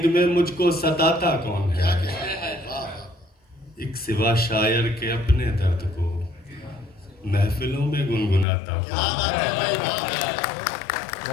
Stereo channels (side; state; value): right; drops out; at 8.5 s